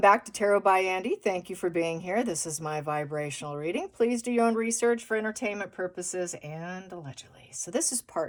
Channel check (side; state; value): both; identical; correlation 1.00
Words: to Tarot by Andy. Thank you for being here. This is my vibrational reading. Please do your own research for entertainment purposes and allegedly. So this is